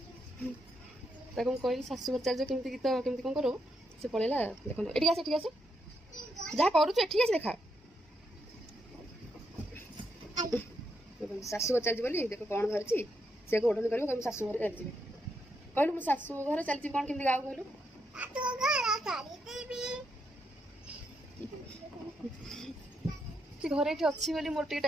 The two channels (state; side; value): normal; both; correlation 0.80